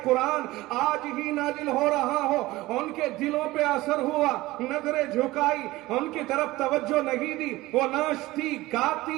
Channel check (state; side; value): quieter; left; 18.7 dB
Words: قرآن آج ہی نازل ہو رہا ہو. ان کے دلوں پہ اثر ہوا، نظریں جھکائی، ان کی طرف توجہ نہیں دی، وہ ناچتی